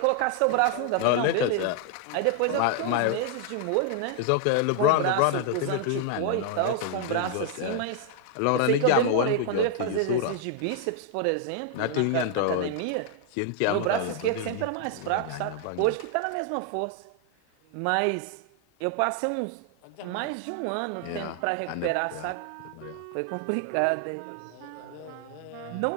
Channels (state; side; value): different; both; correlation 0.00